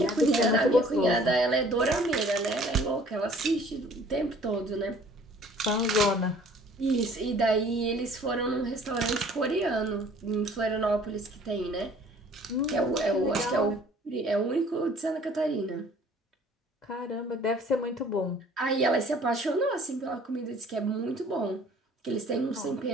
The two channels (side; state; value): both; normal; correlation 0.53